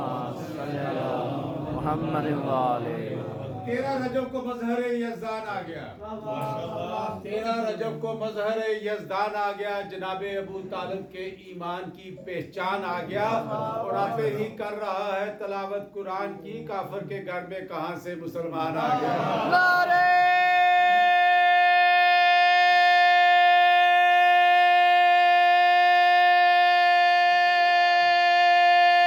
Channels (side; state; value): both; identical; correlation 1.00